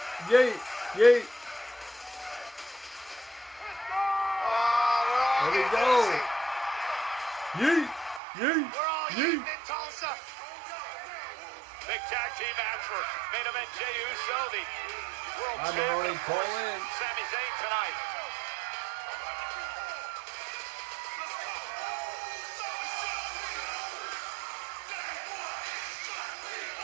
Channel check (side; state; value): left; drops out; at 8.2 s